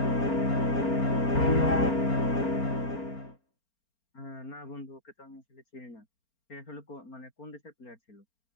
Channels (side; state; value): right; late; 4.4 ms